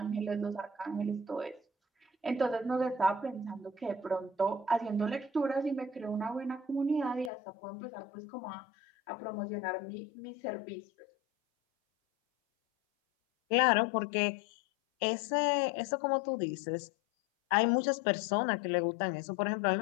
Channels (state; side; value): drops out; right; at 7.3 s